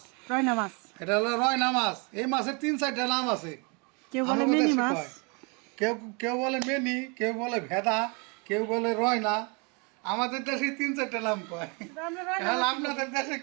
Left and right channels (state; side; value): quieter; left; 32.3 dB